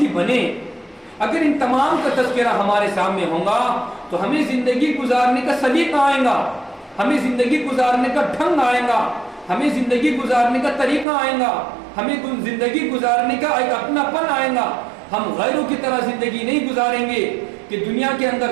بنے۔ اگر ان تمام کا تذکرہ ہمارے سامنے ہوگا تو ہمیں زندگی گزارنے کا سلیقہ آئے گا، ہمیں زندگی گزارنے کا ڈھنگ آئے گا، ہمیں زندگی گزارنے کا طریقہ آئے گا، ہمیں زندگی گزارنے کا ایک اپنا پن آئے گا۔ ہم غیروں کی طرح زندگی نہیں گزاریں گے کہ دنیا کے اندر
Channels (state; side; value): drops out; left; at 11.1 s